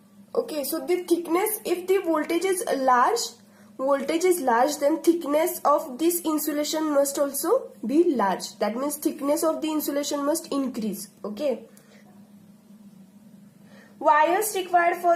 Okay, so the thickness, if the voltage is large, then thickness of this insulation must also be large. That means thickness of the insulation must increase. Okay. Wires required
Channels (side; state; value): both; identical; correlation 1.00